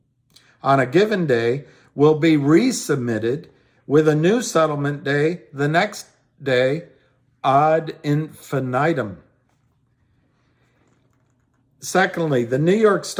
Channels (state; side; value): identical; both; correlation 1.00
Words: on a given day will be resubmitted with a new settlement day the next day ad infinitum. Secondly, the New York